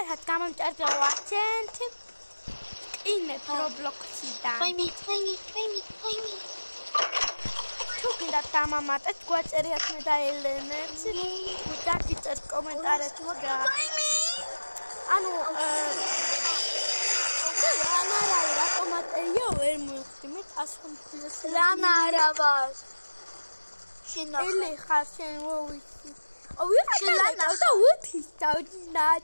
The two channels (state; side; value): inverted; both; correlation -1.00